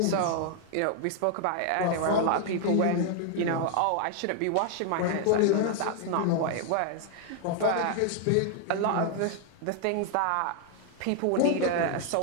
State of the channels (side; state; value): both; different; correlation 0.00